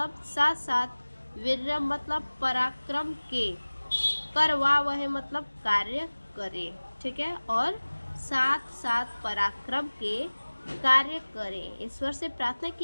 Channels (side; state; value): both; inverted; correlation -1.00